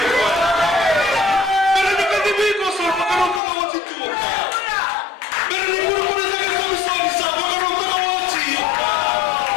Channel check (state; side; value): drops out; right; at 3.4 s